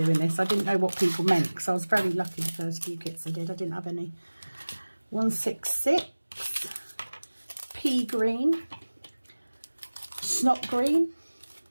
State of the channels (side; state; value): both; inverted; correlation -1.00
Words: this. I didn't know what people meant because I was very lucky the first few kits I did. I didn't have any. 166, pea green, snot green.